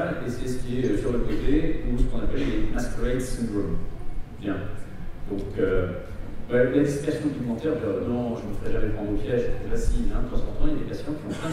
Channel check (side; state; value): both; identical; correlation 1.00